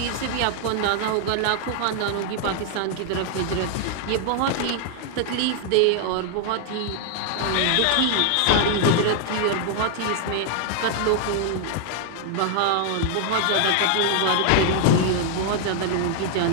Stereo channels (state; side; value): different; both; correlation 0.00